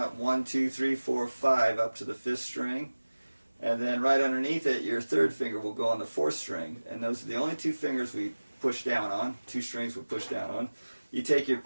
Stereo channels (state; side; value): inverted; both; correlation -1.00